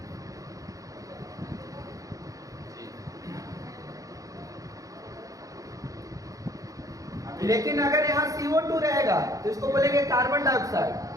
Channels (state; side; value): late; left; 0.16 ms